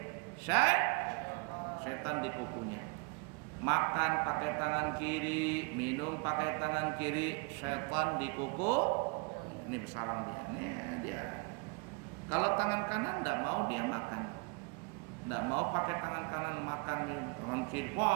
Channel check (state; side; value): quieter; left; 31.8 dB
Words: Setan di kukunya. Makan pakai tangan kiri, minum pakai tangan kiri, setan di kuku. Ini bersarang dia. Nih dia. Kalau tangan kanan tidak mau dia makan, tidak mau pakai tangan kanan makan, tangan kiri,